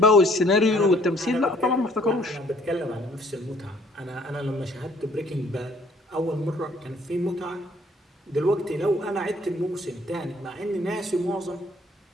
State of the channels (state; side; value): normal; both; correlation 0.60